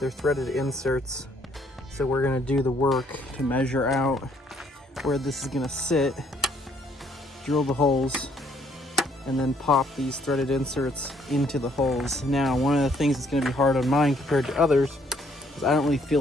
threaded inserts. So we're gonna do the work to measure out where this is gonna sit, drill the holes, and then pop these threaded inserts into the holes. Now, one of the things that's gonna be hard on mine compared to others is I don't really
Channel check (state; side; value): normal; both; correlation 0.66